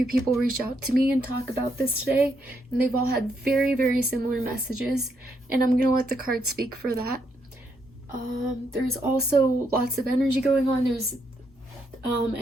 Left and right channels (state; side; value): normal; both; correlation 0.77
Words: people reach out to me and talk about this today, and they've all had very similar messages, and I'm gonna let the cards speak for that. There's also lots of energy going on. There's